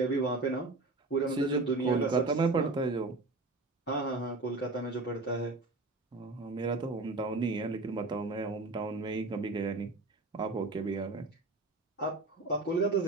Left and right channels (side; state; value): left; quieter; 3.2 dB